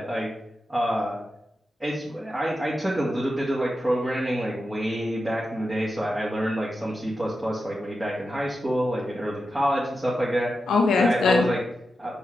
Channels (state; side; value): normal; both; correlation 0.89